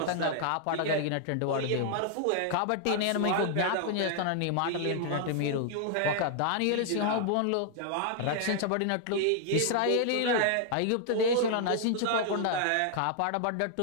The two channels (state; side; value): different; both; correlation -0.01